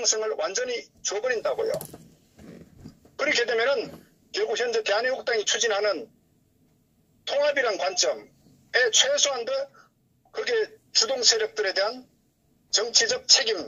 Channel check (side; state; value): both; identical; correlation 1.00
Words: 완전히 줘버린다고요. 그렇게 되면은 결국 현재 대한애국당이 추진하는 통합이란 관점에 최소한도 그게 주동 세력들에 대한 정치적